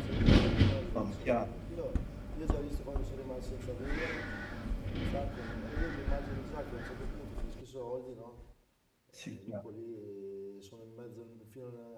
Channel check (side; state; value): both; identical; correlation 1.00